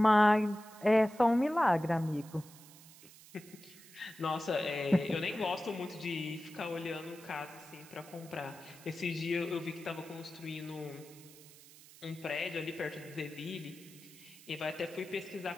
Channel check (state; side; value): noise; right; hiss, 20 dB below the sound